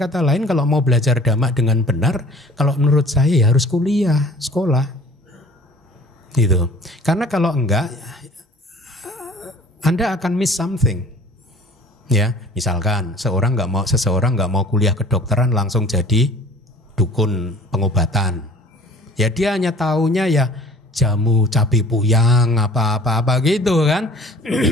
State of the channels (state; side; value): normal; both; correlation 0.49